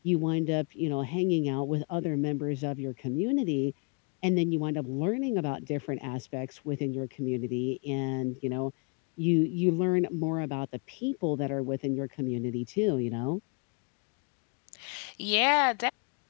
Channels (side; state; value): right; quieter; 35.9 dB